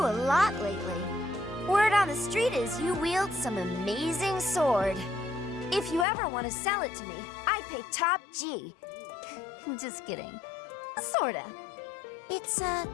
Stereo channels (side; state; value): right; drops out; at 6.1 s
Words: lot lately. Word on the street is you wield some amazing sword. If you ever want to sell it to me, I'd pay top G. Just kidding. Sorta. It's,